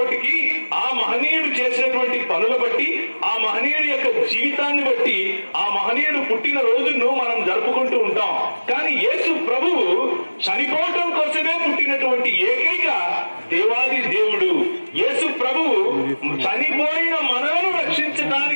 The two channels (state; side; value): inverted; both; correlation -1.00